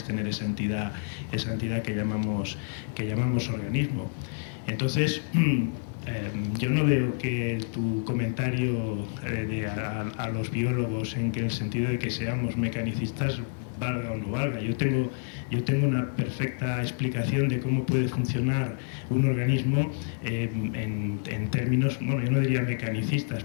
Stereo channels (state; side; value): silent; right; digital silence